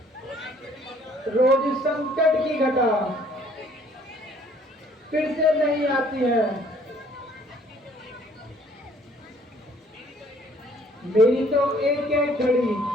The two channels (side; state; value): both; normal; correlation 0.59